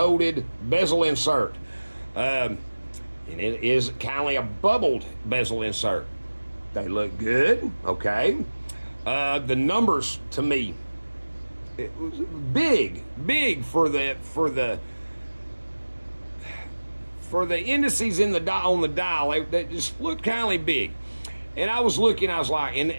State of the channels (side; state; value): both; inverted; correlation -1.00